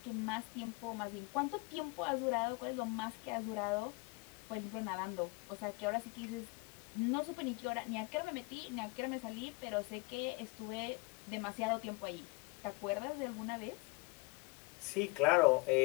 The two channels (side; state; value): right; quieter; 25.5 dB